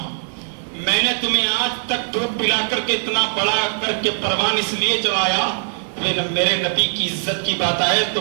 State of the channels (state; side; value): silent; left; digital silence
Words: میں نے تمہیں آج تک دودھ پلا کر کے اتنا بڑا کر کے پروان اس لیے چلایا، میرے نبی کی عزت کی بات آئے تو